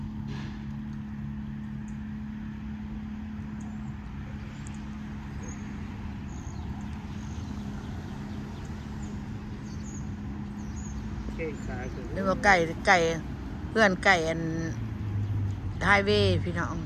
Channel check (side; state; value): both; identical; correlation 1.00